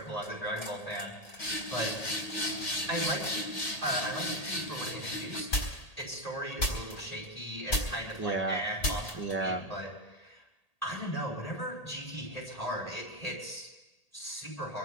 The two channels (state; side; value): late; right; 1.8 ms